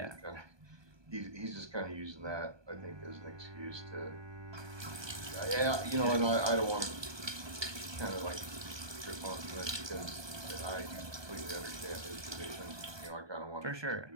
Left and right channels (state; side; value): late; left; 1.2 ms